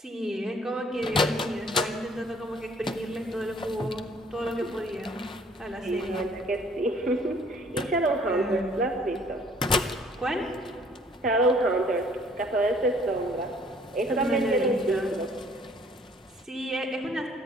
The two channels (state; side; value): normal; both; correlation 0.58